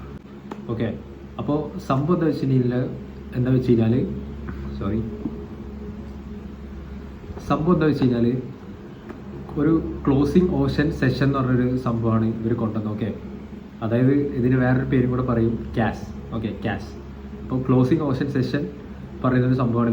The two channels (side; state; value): both; identical; correlation 1.00